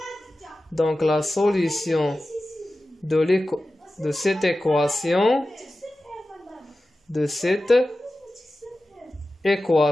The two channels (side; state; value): both; normal; correlation 0.94